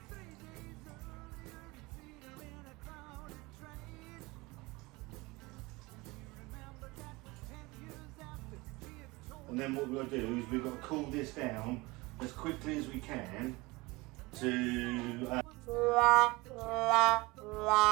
And then what we've got to do is we've got to cool this down as quickly as we can to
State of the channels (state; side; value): quieter; left; 23.2 dB